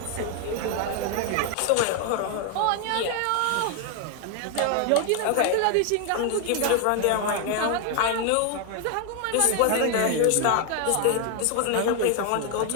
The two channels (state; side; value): different; both; correlation 0.01